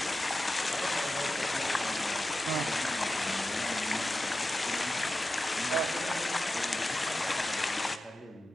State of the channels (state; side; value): normal; both; correlation 0.92